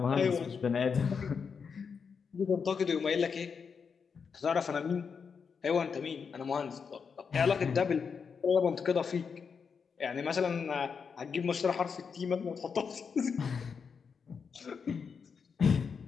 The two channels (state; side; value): quieter; right; 6.0 dB